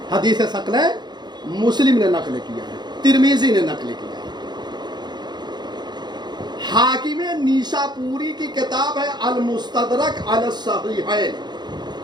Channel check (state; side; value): late; left; 0.21 ms